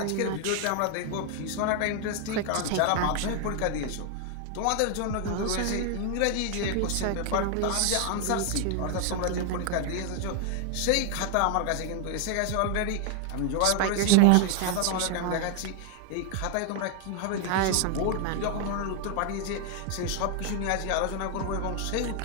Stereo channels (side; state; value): both; different; correlation 0.00